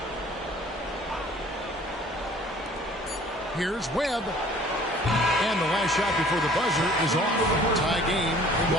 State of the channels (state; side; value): normal; both; correlation 0.52